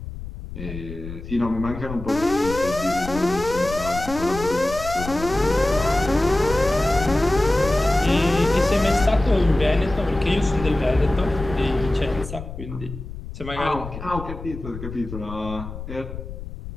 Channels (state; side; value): noise; left; rumble, 10 dB below the sound